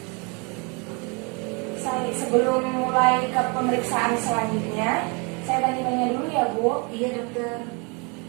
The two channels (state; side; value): quieter; left; 32.0 dB